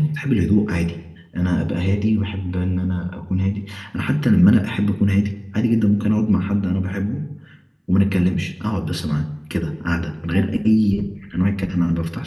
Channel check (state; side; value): identical; both; correlation 1.00